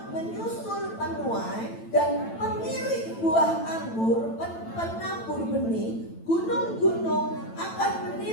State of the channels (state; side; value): late; right; 9.0 ms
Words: menyusul penuai dan pemilik buah anggur, penabur benih, gunung-gunung akan